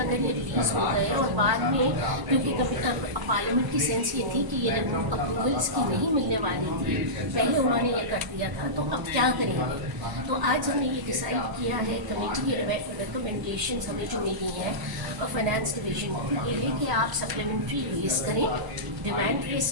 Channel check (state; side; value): late; left; 1.0 ms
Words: ये रिलीज़ हो गए और बाद में, क्योंकि पार्लियामेंट की सेंस ये थी कि ये अप्रूवल इसकी नहीं मिलने वाली थी, पहले उन्होंने ये कर दिया था, तो अब क्या करेंगे। तो आज हमने ये डिसाइड किया है, कमेटी की रिकमेंडेशन हमें जो मिली हैं फाइनेंस डिवीजन को, ये है कि आप सप्लीमेंट्री रेस करें, डिमांड रेस